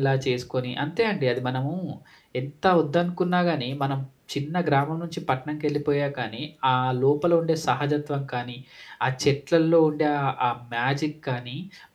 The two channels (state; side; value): identical; both; correlation 1.00